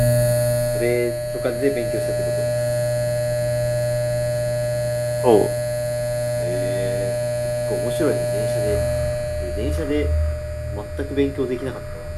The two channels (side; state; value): both; identical; correlation 1.00